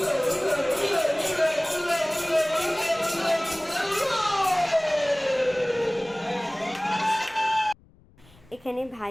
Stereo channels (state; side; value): noise; left; rumble, 28 dB below the sound